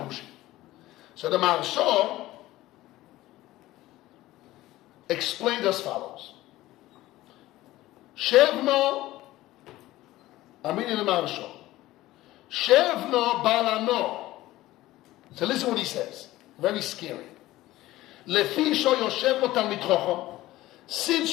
So the Maharsha explained as follows. Shevno, I mean in the Maharsha. Shevno balano. So listen what he says. Very scary. Lefi sho yoshevno talmid chacham. Since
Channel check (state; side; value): quieter; right; 16.6 dB